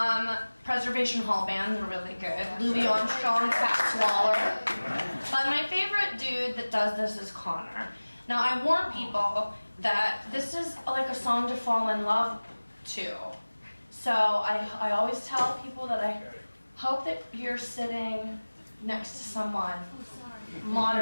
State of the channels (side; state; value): both; inverted; correlation -1.00